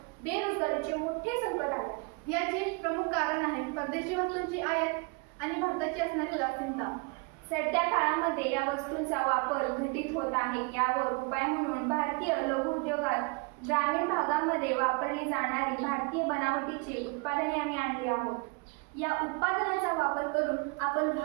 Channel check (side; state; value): left; quieter; 31.1 dB